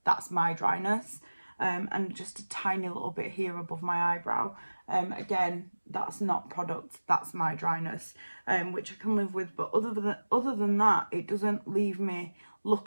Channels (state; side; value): inverted; both; correlation -1.00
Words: That's my dryness. And just a tiny little bit here above my eyebrow. Again, that's not product, that's my dryness, which I can live with. But other than that, it doesn't leave me